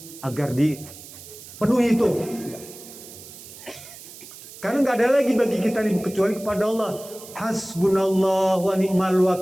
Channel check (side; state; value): right; noise; hiss, 16 dB below the sound